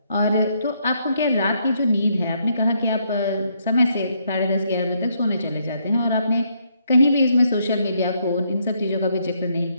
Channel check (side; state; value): both; inverted; correlation -0.73